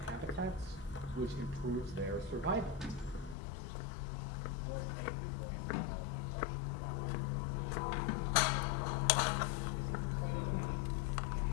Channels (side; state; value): right; drops out; at 3.4 s